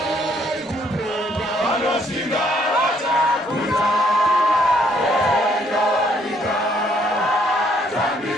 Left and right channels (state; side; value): normal; both; correlation 0.67